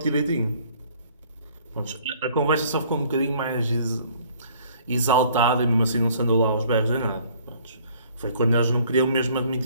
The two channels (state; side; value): inverted; both; correlation -0.57